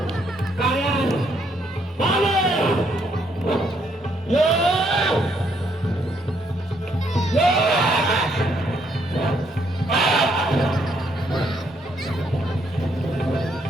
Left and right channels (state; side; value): normal; both; correlation 0.72